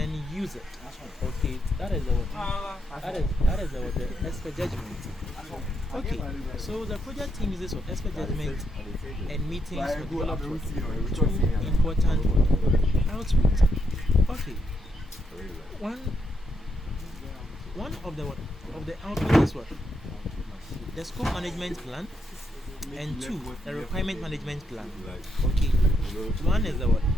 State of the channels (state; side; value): normal; both; correlation 0.79